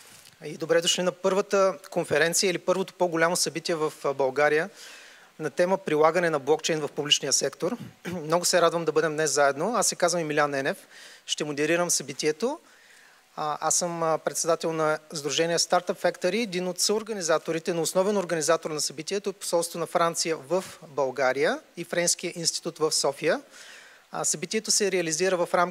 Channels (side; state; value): both; identical; correlation 1.00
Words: и добре дошли на първата конференция или първото по-голямо събитие в България на тема прилагане на блокчейн в публичния сектор. Много се радвам да бъдем днес заедно. Аз се казвам Емилиан Енев, ще модерирам събитието. Аз съм председател на Сдружение Startup Factory, един от съорганизаторите, но основен организатор на събитието е посолство на Франция в България и Френския институт в София. Събитието се реализира в